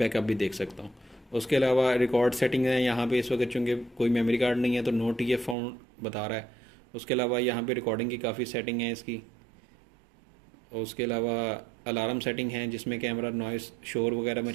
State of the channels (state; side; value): drops out; left; at 5.6 s